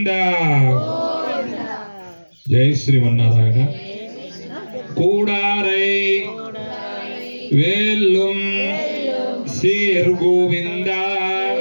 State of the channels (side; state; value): both; inverted; correlation -1.00